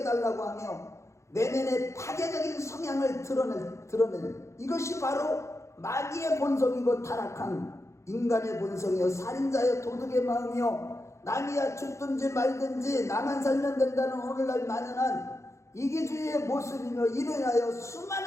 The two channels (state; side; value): late; right; 0.14 ms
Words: 하며 내면의 파괴적인 성향을 드러낸 이것이 바로 마귀의 본성이고 타락한 인간의 본성이요 살인자여 도둑의 마음이요 남이야 죽든지 말든지 나만 살면 된다는 오늘날 만연한 이기주의의 모습이며 이로 인하여